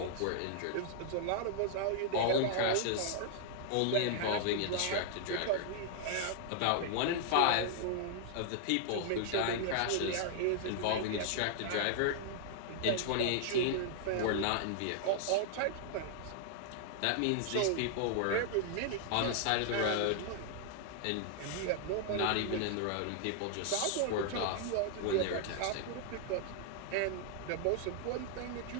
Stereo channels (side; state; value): both; different; correlation -0.01